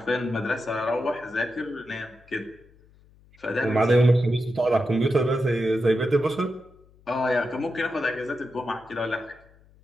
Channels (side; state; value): left; noise; hum, 28 dB below the sound